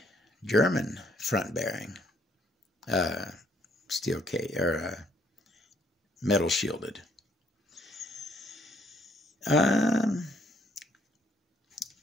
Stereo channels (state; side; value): normal; both; correlation 0.67